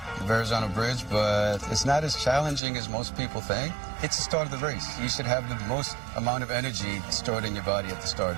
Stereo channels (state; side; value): drops out; left; at 2.6 s